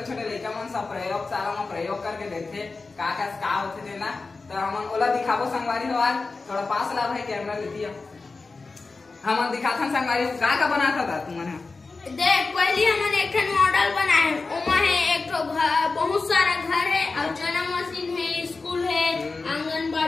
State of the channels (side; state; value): right; quieter; 3.9 dB